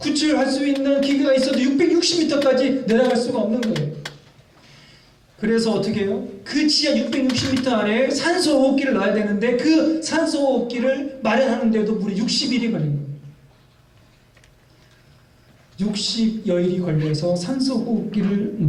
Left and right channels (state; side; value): identical; both; correlation 1.00